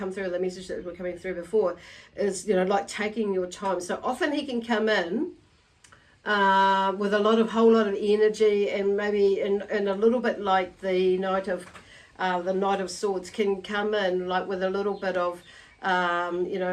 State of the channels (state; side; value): identical; both; correlation 1.00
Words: through, the message that were coming through before is, you know, like taking your time. So often he can come in with a whole lot of energy, and maybe in a little bit like the Knight of Swords can come in like with a little bit of you